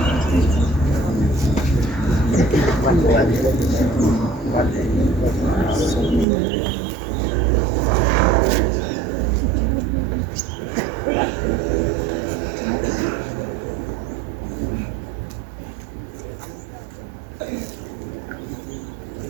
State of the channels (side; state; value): left; drops out; at 6.2 s